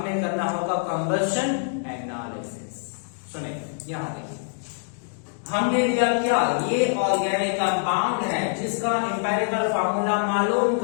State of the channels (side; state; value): right; silent; digital silence